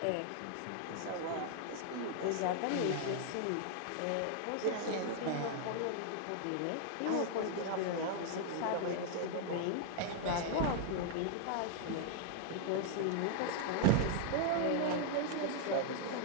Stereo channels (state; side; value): different; both; correlation 0.00